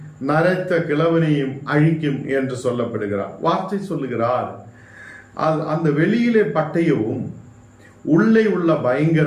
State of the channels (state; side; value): identical; both; correlation 1.00